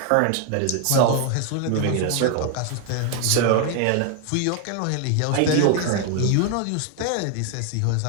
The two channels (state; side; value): different; both; correlation 0.00